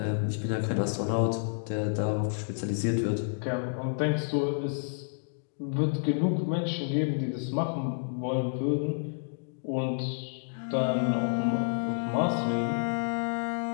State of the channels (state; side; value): silent; right; digital silence